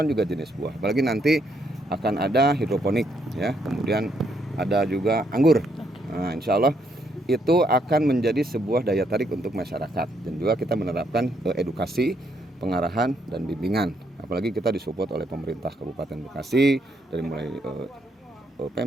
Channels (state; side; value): normal; both; correlation 0.74